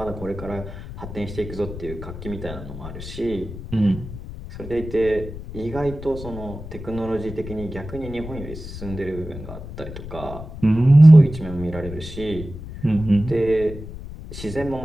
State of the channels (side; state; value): left; noise; rumble, 11 dB below the sound